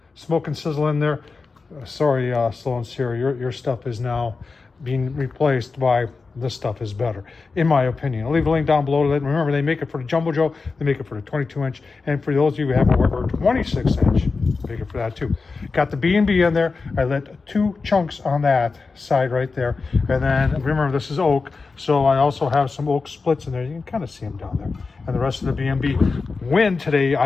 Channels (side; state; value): right; quieter; 4.3 dB